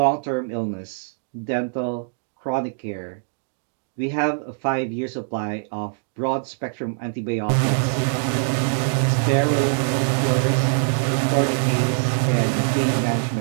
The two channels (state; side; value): silent; left; digital silence